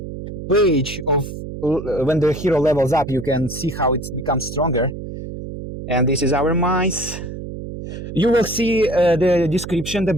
page of when the hero levels up. You can see how it becomes stronger. And this is our mice. You will see the description, the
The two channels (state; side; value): noise; right; hum, 9 dB below the sound